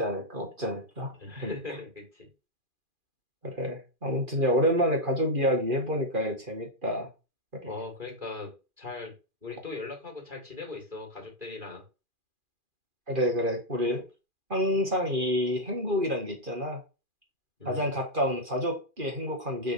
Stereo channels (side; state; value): left; late; 2.4 ms